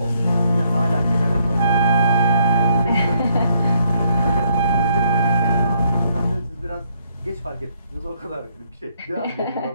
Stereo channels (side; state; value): both; inverted; correlation -0.71